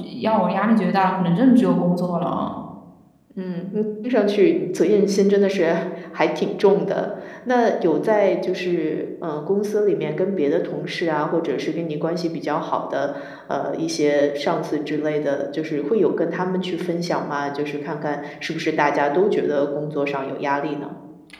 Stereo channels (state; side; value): identical; both; correlation 1.00